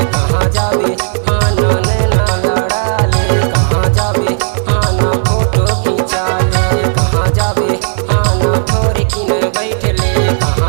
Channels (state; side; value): silent; left; digital silence